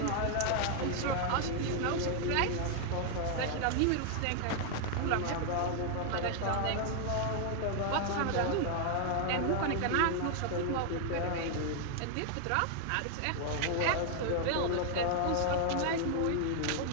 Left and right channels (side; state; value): both; different; correlation 0.00